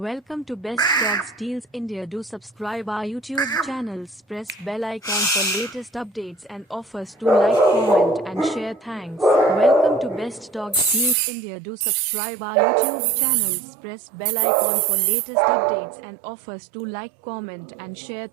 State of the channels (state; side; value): drops out; left; at 11.2 s